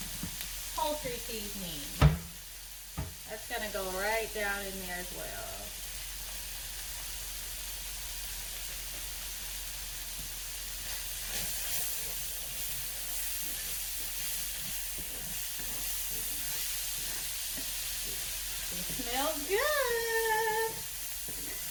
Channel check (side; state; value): both; identical; correlation 1.00